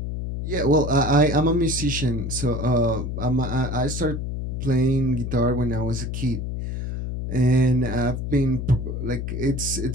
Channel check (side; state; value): left; noise; hum, 4 dB below the sound